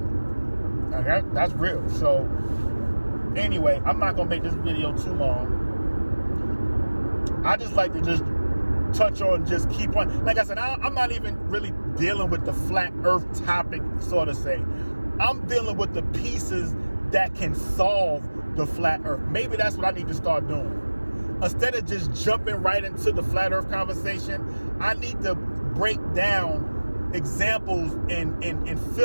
Okay, that's real. So anyway, I'm not gonna make this video too long. I just like to just touch on, just keep on. Like I said, I'm not even really dealing with the flat earth topic, so to say. I'm dealing with the pieces that can solve the flat earth. Maybe that's what I need to start doing. Instead of just jumping right into the flat earth conversation, I need to break down examples and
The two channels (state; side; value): inverted; both; correlation -1.00